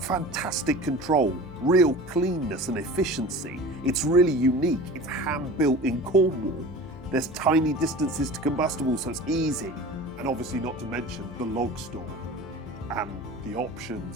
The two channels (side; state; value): left; noise; hum, 19 dB below the sound